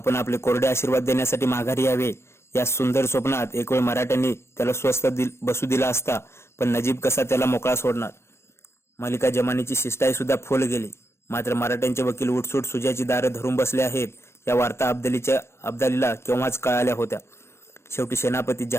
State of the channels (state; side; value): late; right; 0.13 ms